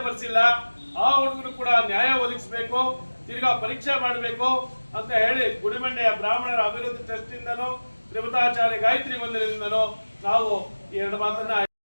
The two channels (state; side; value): inverted; both; correlation -1.00